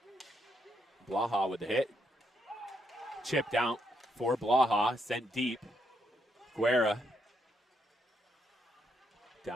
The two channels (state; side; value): normal; both; correlation 0.76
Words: Blaha with the hit. Chipped out for Blaha, sent deep. Guerra.